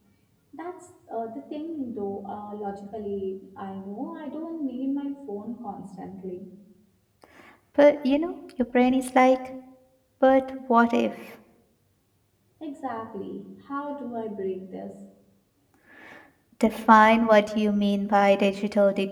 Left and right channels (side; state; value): both; identical; correlation 1.00